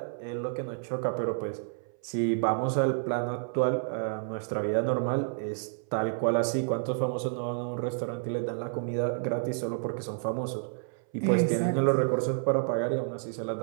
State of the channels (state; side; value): silent; left; 58 dB below the other